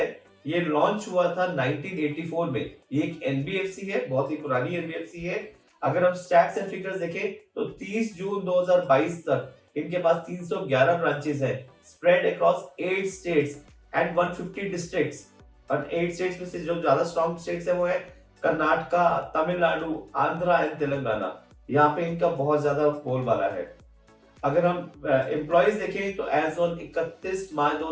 ये लॉन्च हुआ था 1984 में। ये एक एनबीएफसी है, बहुत ही पुरानी एनबीएफसी है। अगर हम स्टैट्स एंड फिगर्स देखें तो 30 जून 2022 तक इनके पास 311 ब्रांचेस हैं, spread across 8 states and 150 districts. और 8 स्टेट्स में से जो ज्यादा स्ट्रॉन्ग स्टेट्स है वो है कर्नाटका, तमिलनाडु, आंध्रा एंड तेलंगाना। यहाँ पे इनका बहुत ज्यादा बोलबाला है। अगर हम एम्प्लॉइज देखें तो एज ऑन 31 मार्च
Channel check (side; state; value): both; identical; correlation 1.00